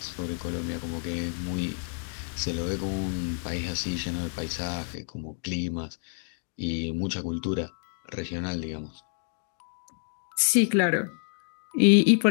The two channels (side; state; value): right; silent; 59 dB below the other